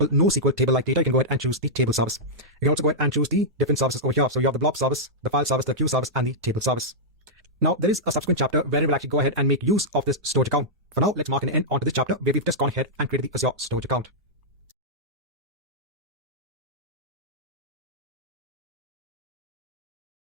NoSQL table-like data, you can go ahead and choose the table service. You can also go ahead and choose the different services over here. So you have the blob service, the file service, the queue service, and the table service. Now, there is a subsequent chapter where we will actually go ahead and make use of this storage account. For now, let's mark an end onto this chapter where we've just gone ahead and created the Azure storage account.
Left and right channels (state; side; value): normal; both; correlation -0.09